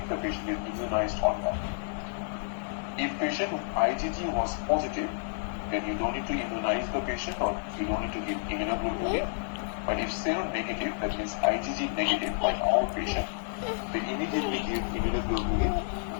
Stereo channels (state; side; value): silent; right; digital silence